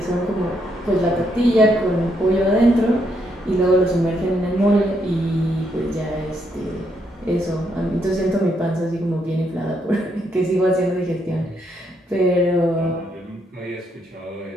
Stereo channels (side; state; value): both; normal; correlation 0.76